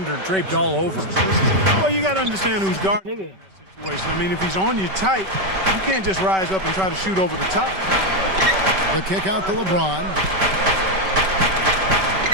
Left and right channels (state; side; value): late; left; 5.2 ms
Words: draped all over him. Well, you got to understand who's guarding Nigga. that situation. I mean, if he's on you tight, you can't just rise up and try to shoot over the top. The kick out to LeBron.